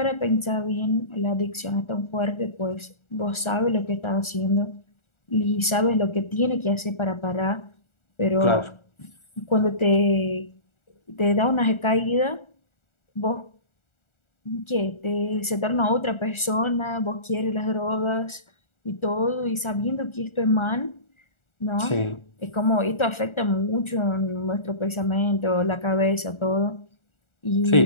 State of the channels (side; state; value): right; late; 1.4 ms